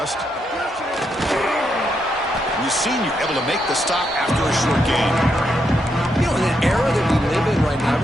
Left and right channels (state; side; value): normal; both; correlation 0.80